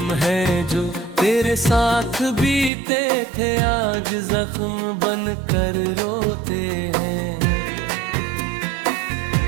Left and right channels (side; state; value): left; drops out; at 2.7 s